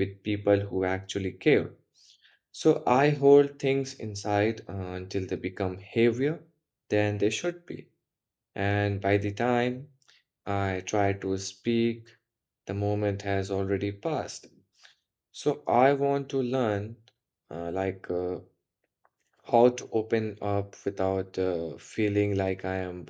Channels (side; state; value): both; identical; correlation 1.00